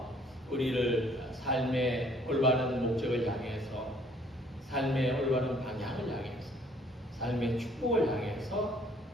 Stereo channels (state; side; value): normal; both; correlation 0.60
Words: 우리를 삶의 올바른 목적을 향해서, 삶의 올바른 방향을 향해서, 삶의 축복을 향해서